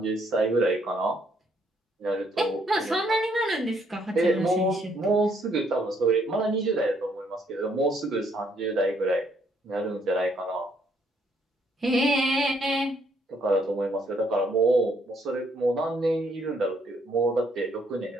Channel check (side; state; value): both; normal; correlation 0.69